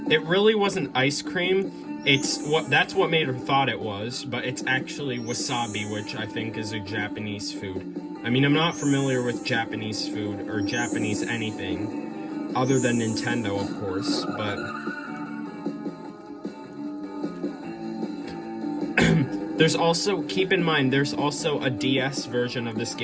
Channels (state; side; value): identical; both; correlation 1.00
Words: It really wasn't ice cream. That's what made her thought it was, but it's actually wasabi, which I think is a Japanese food. I mean, I'm not familiar with Japanese food or Japanese anything other than Nintendo, of course, but there's also, keep in mind, there's also a DS version of this